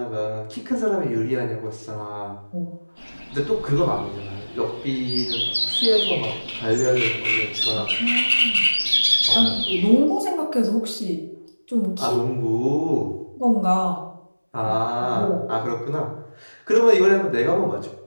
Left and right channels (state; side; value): inverted; both; correlation -1.00